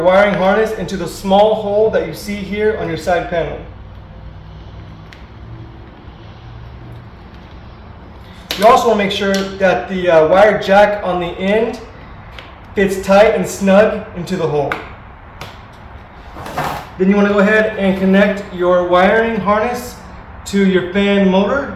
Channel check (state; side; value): identical; both; correlation 1.00